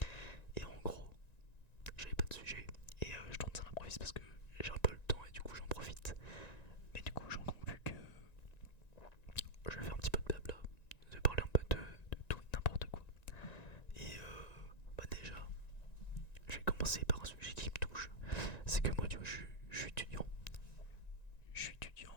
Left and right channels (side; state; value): right; late; 1.9 ms